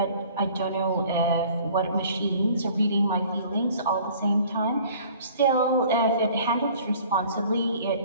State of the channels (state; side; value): inverted; both; correlation -0.51